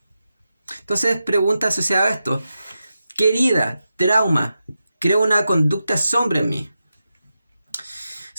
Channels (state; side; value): inverted; both; correlation -0.90